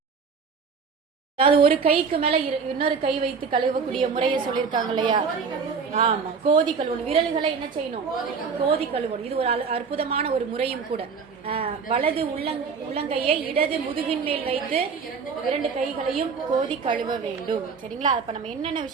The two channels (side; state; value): left; quieter; 5.5 dB